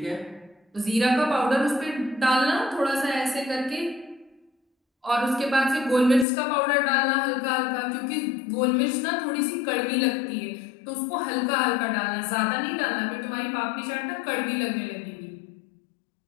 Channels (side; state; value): right; drops out; at 6.2 s